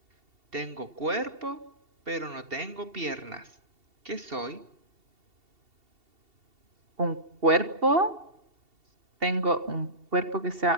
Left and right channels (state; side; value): late; left; 2.7 ms